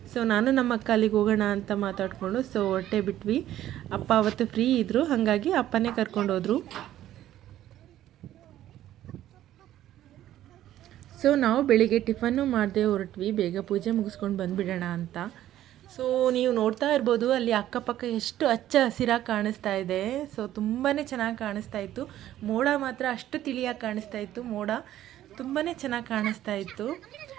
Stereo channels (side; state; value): left; quieter; 12.8 dB